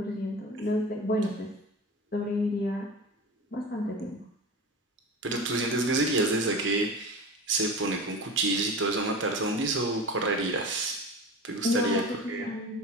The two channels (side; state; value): both; normal; correlation 0.32